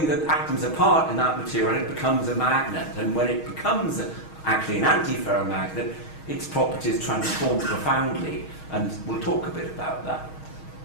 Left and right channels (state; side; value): late; right; 6.3 ms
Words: the atoms apart in that material, it becomes a magnet. And when it becomes actually an antiferromagnet, its properties transform profoundly. And we'll talk a bit about that.